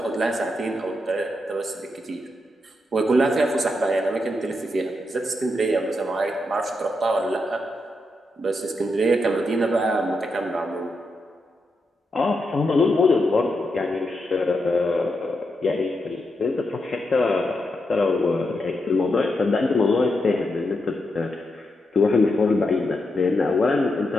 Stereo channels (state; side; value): normal; both; correlation 0.84